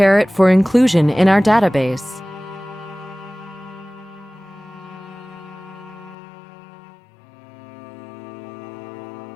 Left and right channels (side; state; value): right; drops out; at 6.2 s